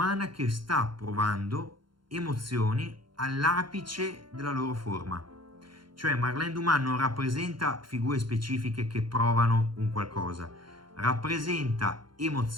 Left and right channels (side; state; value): left; late; 0.72 ms